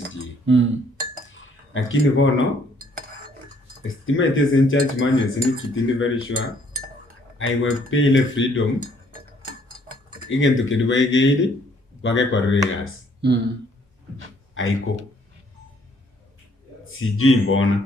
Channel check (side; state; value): both; normal; correlation 0.64